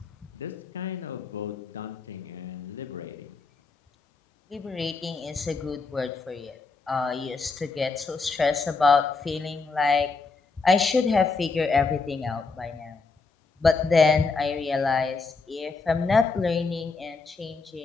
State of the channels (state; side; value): quieter; right; 4.2 dB